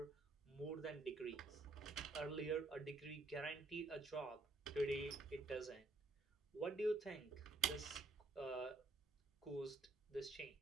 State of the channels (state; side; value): quieter; left; 3.2 dB